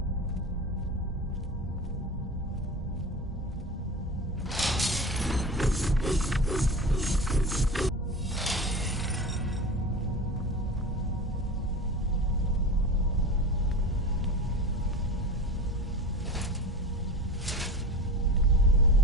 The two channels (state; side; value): normal; both; correlation 0.31